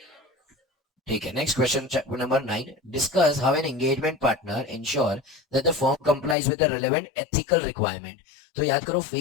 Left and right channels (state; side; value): drops out; right; at 6.4 s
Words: ठीक है, next question number 9. Discuss how an engagement partner ensure that the firm complies with the relevant ethical requirement. तो याद करो